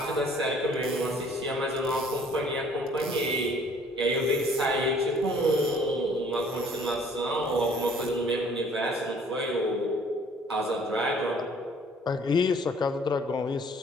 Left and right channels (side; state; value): both; normal; correlation 0.57